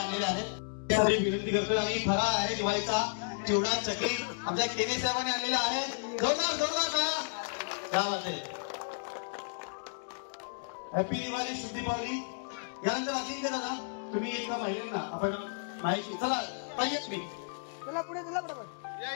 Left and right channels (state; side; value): silent; right; digital silence